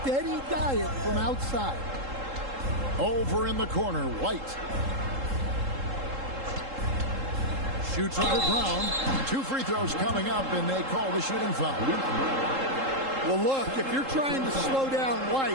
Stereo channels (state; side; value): late; left; 3.7 ms